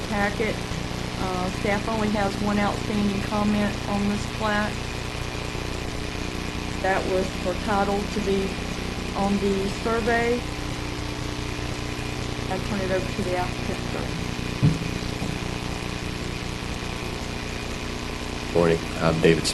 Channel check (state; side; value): identical; both; correlation 1.00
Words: packet. Staff only has one outstanding comment on this plat. That was for title to be on the survey. I'll turn it over to the applicant, sir. Morning. I'm David